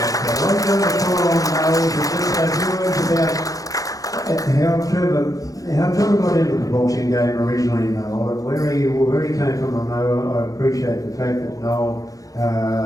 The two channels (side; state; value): right; late; 0.17 ms